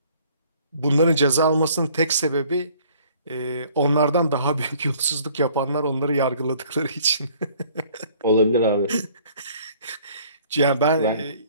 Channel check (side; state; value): both; inverted; correlation -0.57